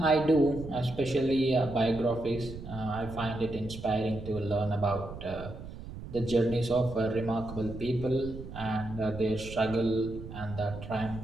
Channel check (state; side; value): noise; right; rumble, 11 dB below the sound